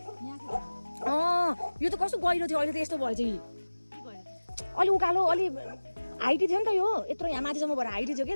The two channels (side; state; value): both; inverted; correlation -1.00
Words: यो त कस्तो गहिरो थियो अहिले त यस्तो भएछ कि अलि उकालो अलि हाइटी थियो नि त यो यत्रो यहाँ माथिसम्म भएर हाइटी थियो कि